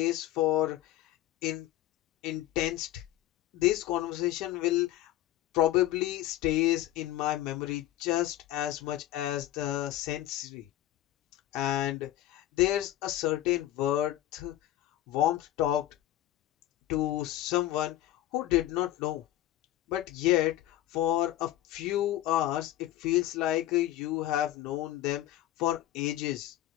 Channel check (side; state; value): right; quieter; 14.1 dB